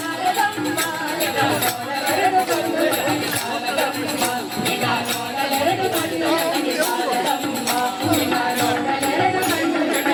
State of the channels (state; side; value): identical; both; correlation 1.00